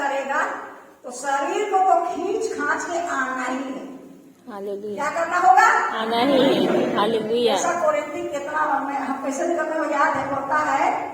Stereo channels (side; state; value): both; identical; correlation 1.00